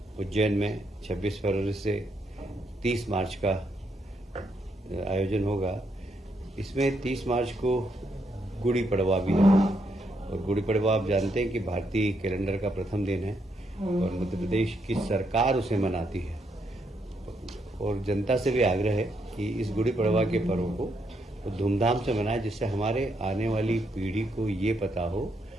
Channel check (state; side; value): normal; both; correlation 0.77